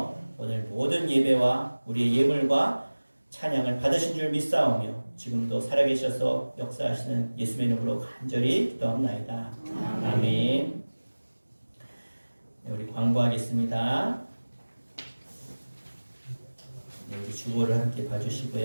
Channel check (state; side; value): inverted; both; correlation -1.00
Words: 오늘 모든 예배와 우리의 예물과 찬양을 받으신 줄 믿사오며 지금도 살아계셔서 역사하시는 예수의 이름으로 간절히 기도합나이다. 아멘. 네, 우리 광고하겠습니다. 네, 우리 주보를 함께